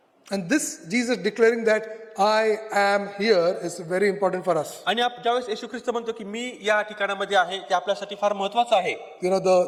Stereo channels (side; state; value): both; identical; correlation 1.00